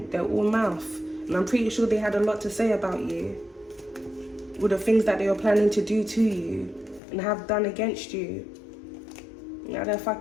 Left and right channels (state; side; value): drops out; right; at 7.0 s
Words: They're all mouth. And I'm pretty sure they had a lot to say about you. With the things that they were planning to do to you and have done against you. Now their